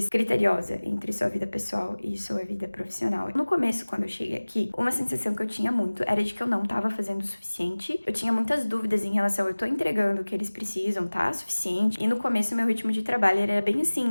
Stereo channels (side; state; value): both; inverted; correlation -1.00